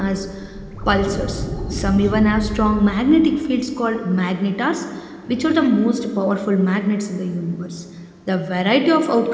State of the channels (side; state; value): both; identical; correlation 1.00